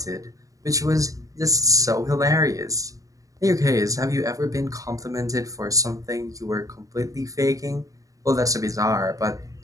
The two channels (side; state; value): left; late; 0.16 ms